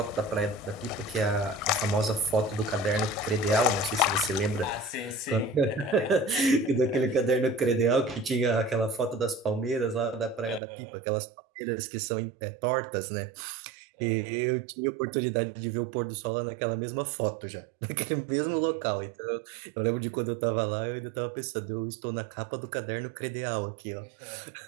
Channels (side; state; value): left; drops out; at 10.6 s